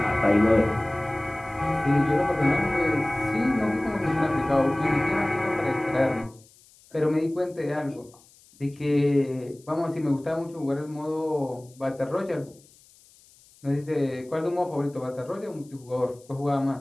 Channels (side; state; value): left; noise; hiss, 28 dB below the sound